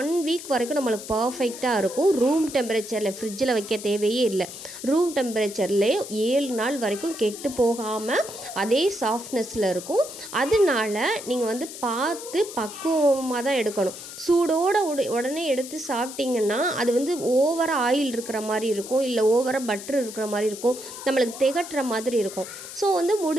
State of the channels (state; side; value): noise; left; hiss, 12 dB below the sound